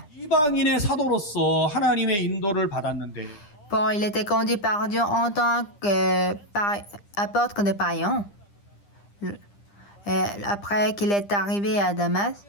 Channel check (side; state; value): right; late; 9.9 ms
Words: Paul, il était conduit par Dieu en tant qu'apôtre de païens. Après qu'il est arrivé à Damas,